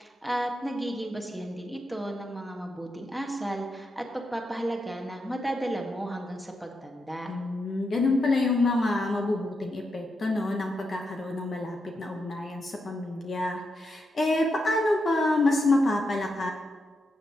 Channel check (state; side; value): normal; both; correlation 0.84